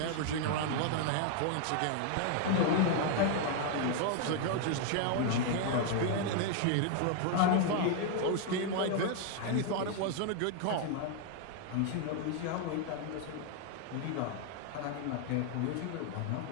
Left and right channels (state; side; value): different; both; correlation 0.00